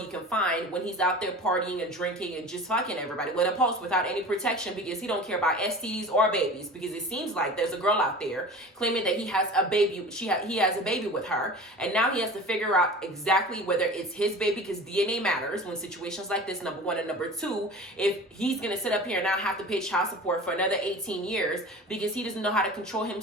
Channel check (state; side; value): normal; both; correlation 0.38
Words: can find when he's out there partying and drinking and just fucking everybody with a post without any protection, because he don't care about STDs or babies, because it seems like there's a girl out there claiming that he has a baby, he has a baby with her, and now he has to figure out exactly whether it's his baby, because DNA matters when situations like this, number one, and number two, if he's gonna sit up here and now have to pay child support for another 18 years because he doesn't know how to control